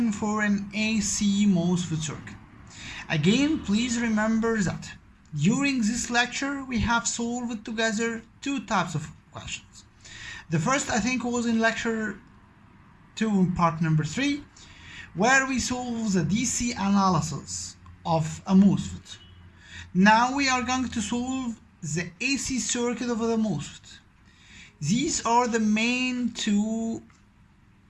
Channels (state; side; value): identical; both; correlation 1.00